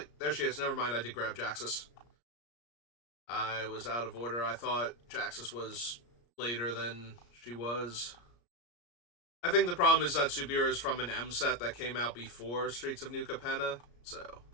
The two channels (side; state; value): right; late; 34 ms